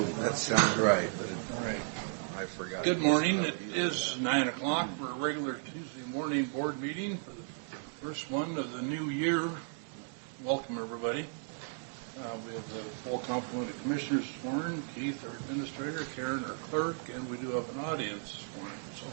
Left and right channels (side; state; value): left; silent; 55 dB below the other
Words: That sounds right, but I forgot. Good morning. It is 9 o'clock for a regular Tuesday morning board meeting for the first one of the new year. Welcome, everybody. We have the full complement of commissioners sworn, Keith, our administrator, Karen, our clerk, and we do have an audience sworn. So